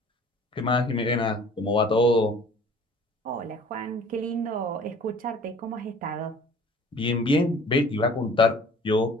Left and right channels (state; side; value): normal; both; correlation 0.49